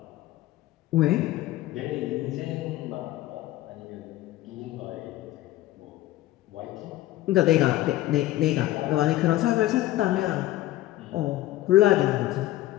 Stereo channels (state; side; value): quieter; right; 15.6 dB